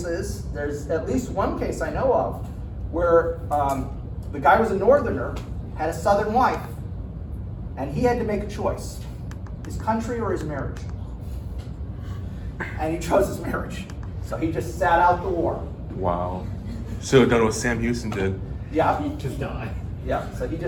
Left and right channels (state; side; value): identical; both; correlation 1.00